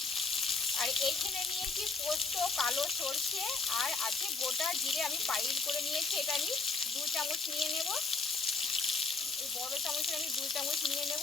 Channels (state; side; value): quieter; right; 4.4 dB